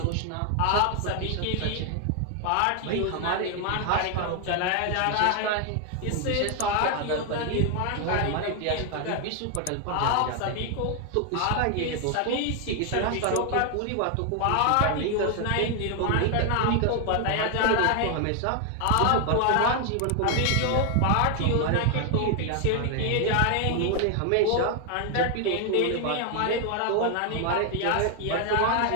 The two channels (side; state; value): both; different; correlation 0.00